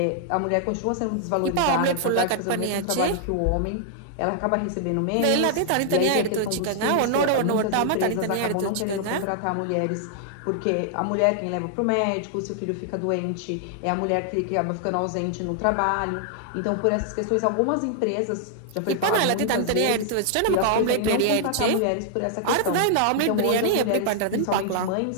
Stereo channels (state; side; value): different; both; correlation -0.01